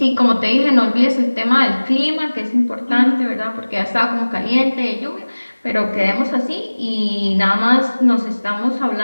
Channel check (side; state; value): both; inverted; correlation -1.00